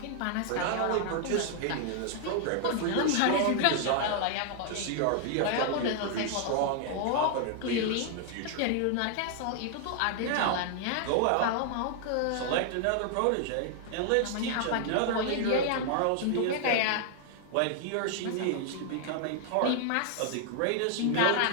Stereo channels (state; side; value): different; both; correlation 0.00